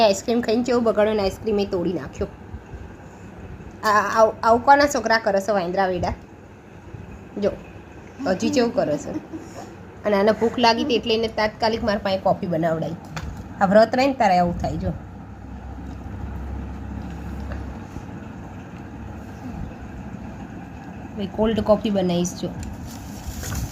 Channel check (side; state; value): both; identical; correlation 1.00